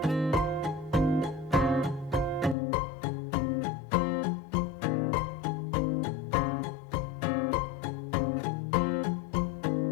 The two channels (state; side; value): drops out; right; at 2.6 s